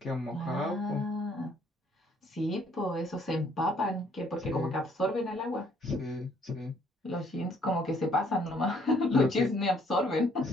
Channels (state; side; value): normal; both; correlation 0.64